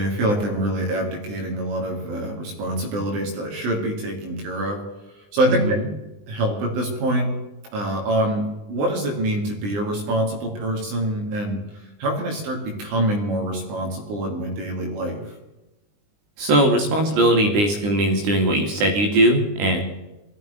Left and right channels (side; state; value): left; late; 20 ms